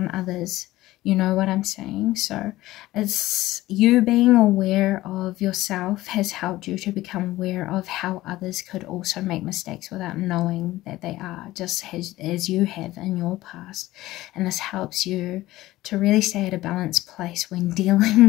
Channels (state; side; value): quieter; right; 16.8 dB